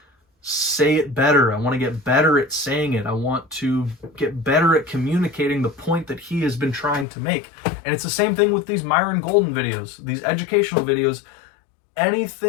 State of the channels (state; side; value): drops out; right; at 7.1 s